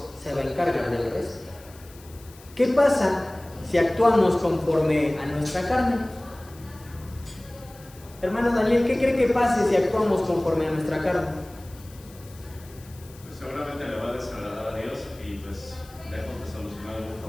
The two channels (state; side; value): noise; left; hiss, 23 dB below the sound